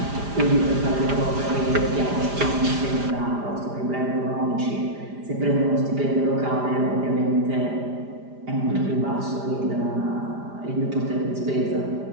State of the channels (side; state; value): left; late; 5.0 ms